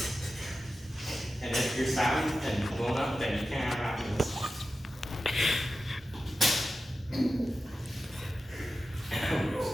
And if you're sad and blown up, then you can't have happiness.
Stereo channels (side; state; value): both; normal; correlation 0.93